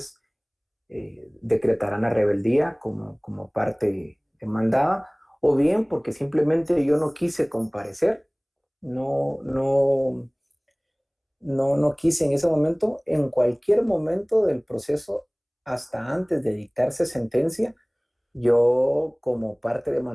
decretarán la rebeldía como parte demandada, o bien porque simplemente yo no quise comparecer, no quise en ese momento. En cualquier momento del proceso, hasta antes de dictarse sentencia, yo como parte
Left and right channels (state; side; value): identical; both; correlation 1.00